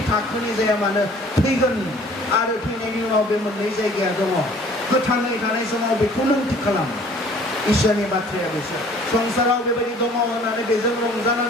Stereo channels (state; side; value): normal; both; correlation 0.53